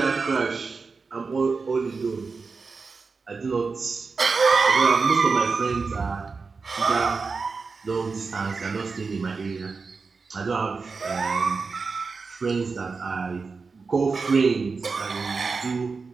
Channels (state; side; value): quieter; left; 4.6 dB